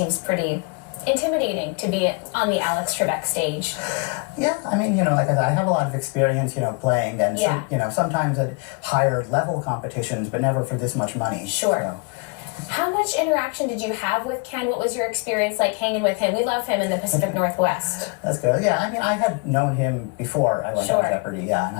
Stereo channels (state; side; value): quieter; right; 32.0 dB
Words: pretty intimidating to be on the Alex Trebek stage. Yeah, I mean, like I said, I have a lot of experience, playing and, sometimes at higher level competitions, but never for this much money. Sure. How much interaction did you have with Ken? What was your experience like hanging with him? We love him in the Pacific Northwest. That's good. Yeah, I mean, I had known him before I went on Jeopardy,